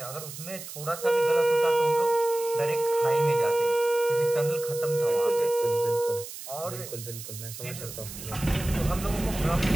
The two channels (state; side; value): noise; right; hiss, 12 dB below the sound